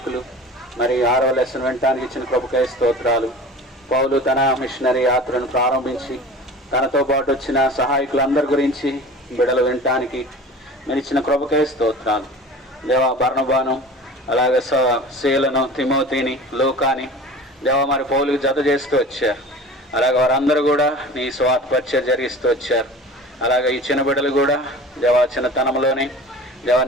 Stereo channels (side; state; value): both; normal; correlation 0.39